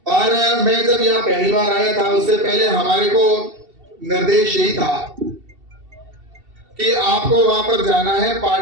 और मैं जब यहाँ पहली बार आया था उससे पहले हमारे को निर्देश यही था कि आपको वहां पर जाना है,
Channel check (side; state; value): left; late; 2.7 ms